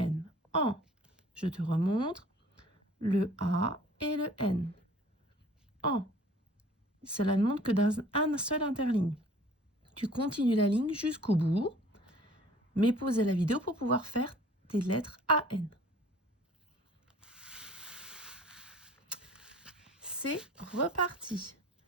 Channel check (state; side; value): normal; both; correlation 0.51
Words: AN. Je te remontre le A et le N. AN. Cela ne montre que d'un seul interligne. Tu continues la ligne jusqu'au bout, mais pausez la vidéo pour pouvoir faire tes lettres AN. C'est reparti.